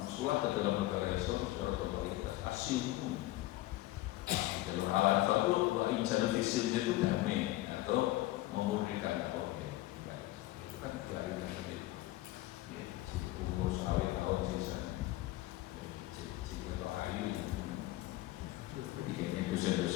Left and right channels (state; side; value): quieter; right; 17.2 dB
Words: ke dalam negara Islam secara totalitas asil hukum. Kalau halal fakut, wa insan fisil itu damai atau memurnikan apa? Kan dari tadi umur sekali tahun sisa atau ayu jadi kayaknya